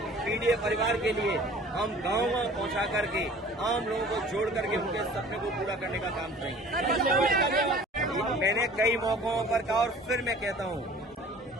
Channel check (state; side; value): normal; both; correlation 0.48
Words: पीड़ित परिवार के लिए, हम गाँव पहुंचा करके आम लोगों को जोड़ करके उनके सपने को पूरा करने का काम करेंगे। मैंने कई मौकों पर कहा और फिर मैं कहता हूं,